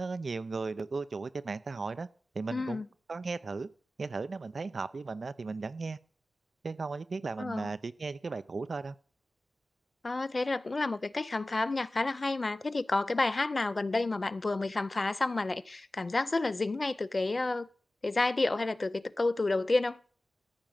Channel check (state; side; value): normal; both; correlation 0.96